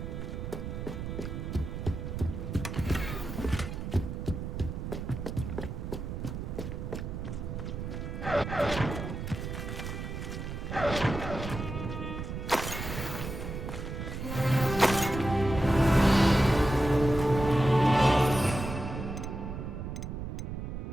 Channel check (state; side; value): noise; right; rumble, 6 dB below the sound